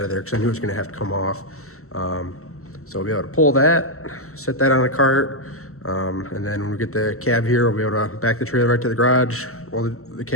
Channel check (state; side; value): late; right; 0.63 ms